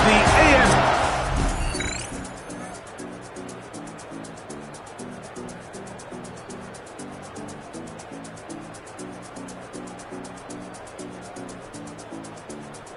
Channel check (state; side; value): identical; both; correlation 1.00